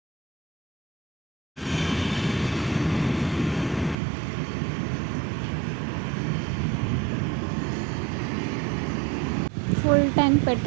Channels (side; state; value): left; drops out; at 4.0 s